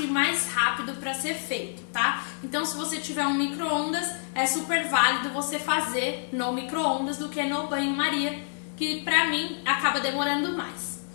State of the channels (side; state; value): right; silent; digital silence